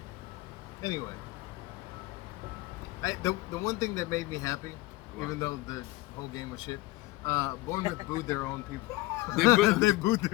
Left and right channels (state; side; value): quieter; right; 20.2 dB